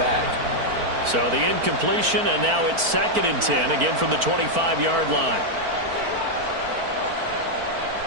So the incompletion, and now it's 2nd and 10, again from the 25-yard line.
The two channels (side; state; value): left; late; 4.4 ms